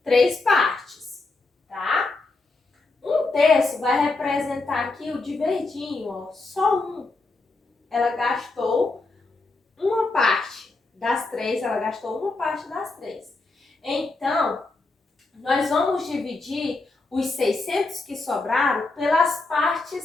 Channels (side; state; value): right; quieter; 3.4 dB